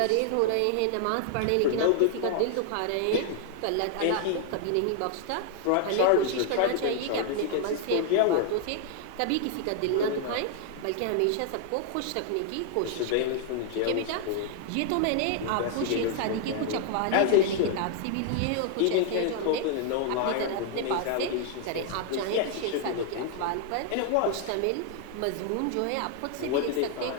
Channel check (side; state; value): both; different; correlation 0.00